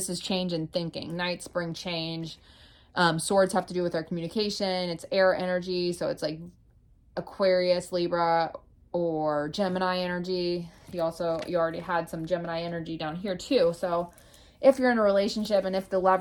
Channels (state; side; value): identical; both; correlation 1.00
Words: is change in thinking. Knights bring change. Swords have to do with our communication. It's air energy, so it's like Aquarius, Libra, or Gemini energy. You already had some Gemini energy down here too. So if you're in a relationship, and if the